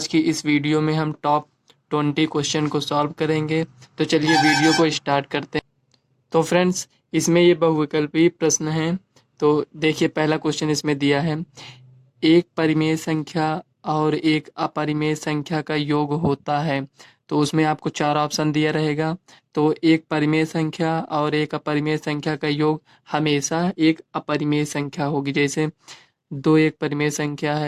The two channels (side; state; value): both; identical; correlation 1.00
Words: की इस वीडियो में हम टॉप 20 क्वेश्चन को सॉल्व करेंगे। तो चलिए वीडियो को स्टार्ट करते हैं। तो फ्रेंड्स, इसमें ये बहुविकल्पीय प्रश्न हैं। तो देखिए, पहला क्वेश्चन इसमें दिया है, एक परिमेय संख्या और एक अपरिमेय संख्या का योग होता है। तो उसमें आपको 4 ऑप्शन दिया रहेगा। तो एक परिमेय संख्या और एक अपरिमेय संख्या का योग हमेशा एक अपरिमेय संख्या होगी। जैसे दो एक परिमेय संख्या